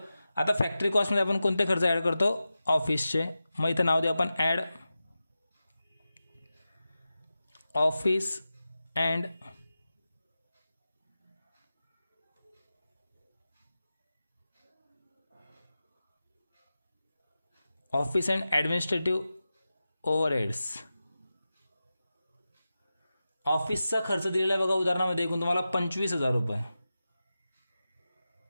आता फॅक्टरी कॉस्टमध्ये आपण कोणते खर्च ॲड करतो? ऑफिसचे. मग इथं नाव देऊ आपण add office and administrative overheads. ऑफिसचा खर्च दिलेला आहे बघा उदाहरणामध्ये एकूण तुम्हाला 25,000 रुपये.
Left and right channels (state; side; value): inverted; both; correlation -0.93